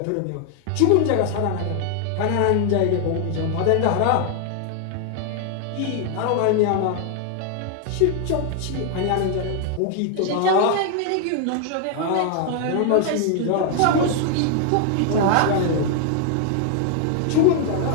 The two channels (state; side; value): different; both; correlation 0.00